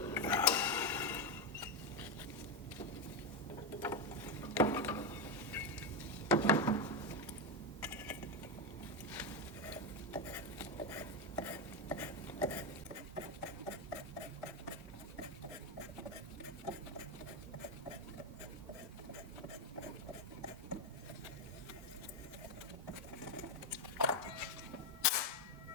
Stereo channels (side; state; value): both; normal; correlation 0.07